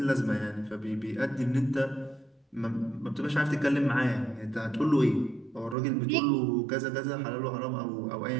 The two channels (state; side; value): drops out; left; at 5.8 s